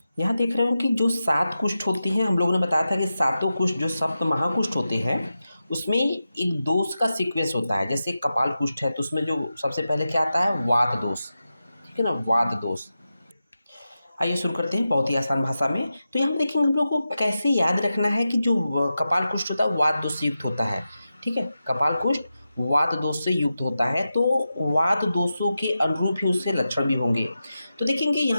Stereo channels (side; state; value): both; inverted; correlation -0.91